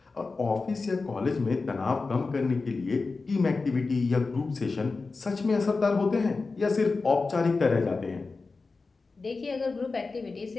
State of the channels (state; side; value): quieter; right; 4.0 dB